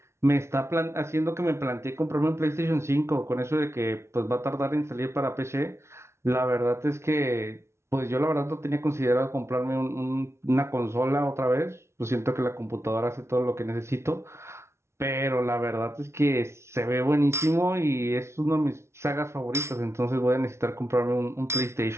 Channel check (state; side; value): late; left; 0.13 ms